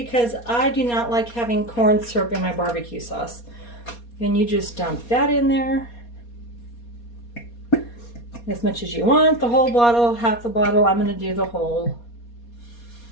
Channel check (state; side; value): late; right; 4.2 ms